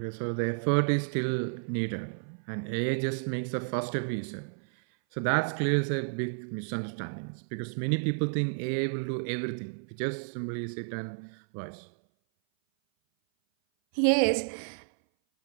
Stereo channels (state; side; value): silent; left; 56 dB below the other